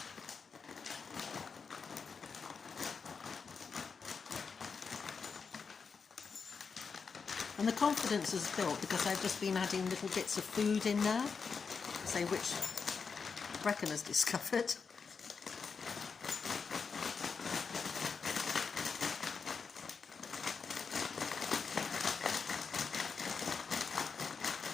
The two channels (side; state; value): right; quieter; 5.4 dB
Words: And the confidence is built because I've just been adding little bits of food in there, say which Brecken has discovered.